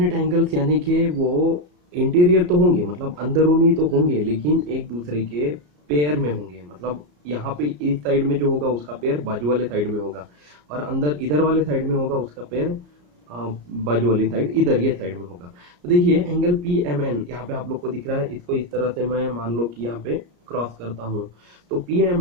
एंगल्स यानी कि वो इंटीरियर तो होंगे, मतलब अंदरूनी तो होंगे, लेकिन एक दूसरे के पेयर में होंगे। मतलब यहाँ पे इस साइड में जो होगा उसका पेयर बाजू वाले साइड में होगा, और अंदर इधर वाले साइड में होगा उसका पेयर बाजू वाली साइड इधर ये साइड में होगा। तो देखिए एंगल पी एम एन यहाँ पे आप लोग को दिख रहा है, इसको इस तरह से मैं मान लो कि यहाँ पे क्रॉस करता हूँ, तो पी एम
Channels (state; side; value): late; left; 34 ms